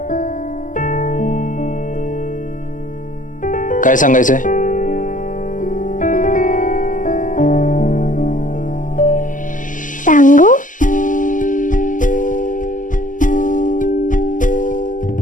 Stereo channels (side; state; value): right; late; 0.38 ms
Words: काय सांगायचंय? सांगू?